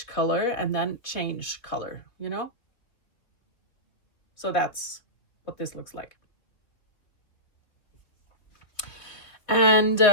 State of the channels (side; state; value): right; late; 3.1 ms